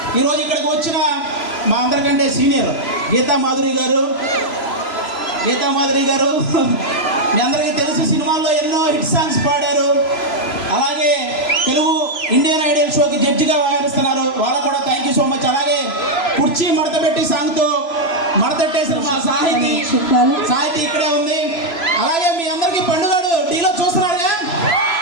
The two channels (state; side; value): late; right; 3.0 ms